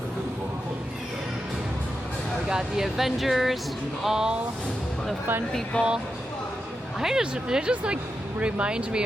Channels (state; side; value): normal; both; correlation 0.88